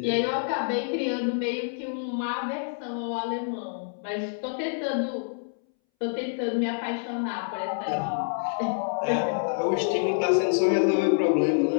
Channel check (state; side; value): silent; right; 60 dB below the other